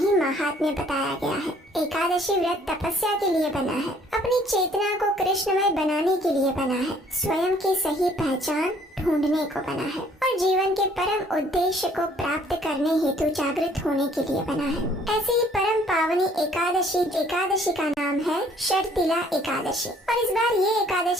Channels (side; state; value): both; normal; correlation 0.60